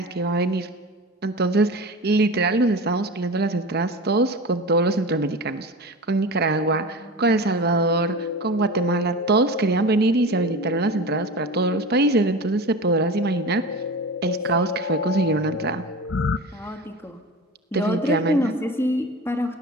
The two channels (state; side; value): normal; both; correlation 0.31